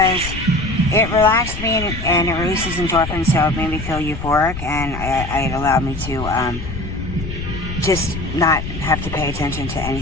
it relaxed me and it releases endorphins, so it made me feel euphoric, and it allowed me to just not have to pay attention to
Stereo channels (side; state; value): left; noise; rumble, 8 dB below the sound